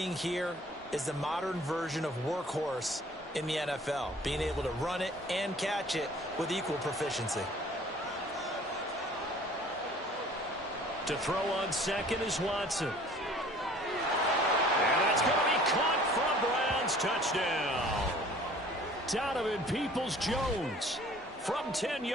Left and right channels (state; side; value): normal; both; correlation 0.51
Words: here is the modern version of workhorse in the NFL, being able to run it and catch it with equal proficiency. To throw on 2nd is Watson. And that's going to be caught from Browns. Touchdown. Donovan Peoples-Jones from 10